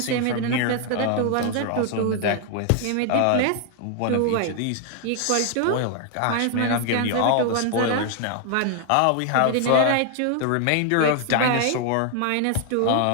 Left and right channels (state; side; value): different; both; correlation 0.00